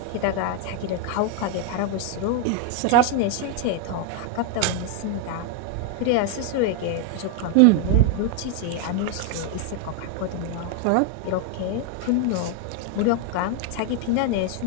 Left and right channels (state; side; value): different; both; correlation 0.01